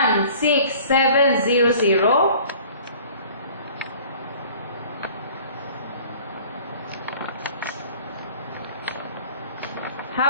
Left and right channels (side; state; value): both; inverted; correlation -0.48